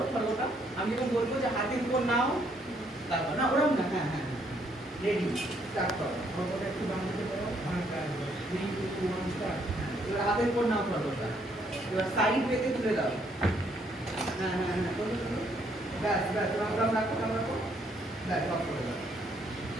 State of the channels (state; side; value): normal; both; correlation 0.70